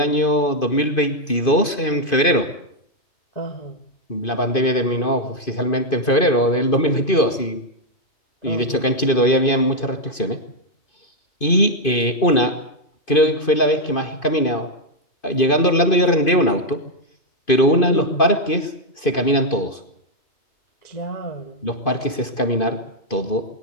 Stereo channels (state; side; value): late; right; 2.5 ms